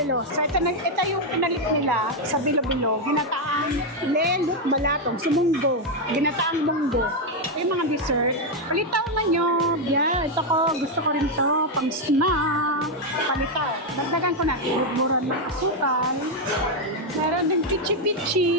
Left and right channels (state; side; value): normal; both; correlation 0.03